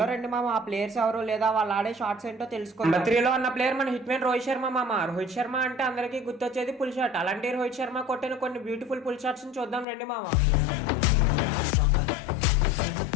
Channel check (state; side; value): drops out; right; at 9.9 s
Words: రండి మామ, ఆ ప్లేయర్స్ ఎవరు లేదా వాళ్ళు ఆడే షార్ట్స్ ఏంటో తెలుసుకుందాం. నెంబర్ 3 లో ఉన్న ప్లేయర్ మన హిట్ మ్యాన్ రోహిత్ శర్మ మామ. రోహిత్ శర్మ అంటే అందరికీ గుర్తొచ్చేది పుల్ షాట్. అలాంటి రోహిత్ శర్మ కొట్టిన కొన్ని బ్యూటిఫుల్ పుల్ షాట్స్ ని చూద్దాం రండి మామ.